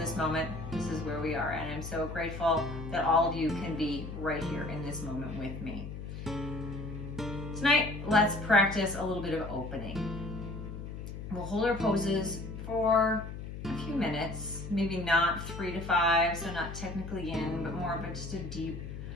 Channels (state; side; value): noise; left; hum, 9 dB below the sound